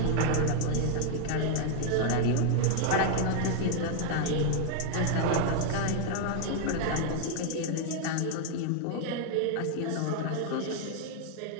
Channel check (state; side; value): different; both; correlation 0.00